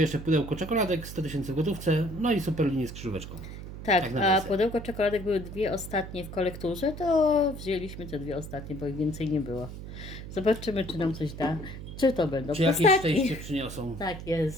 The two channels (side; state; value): right; noise; hum, 11 dB below the sound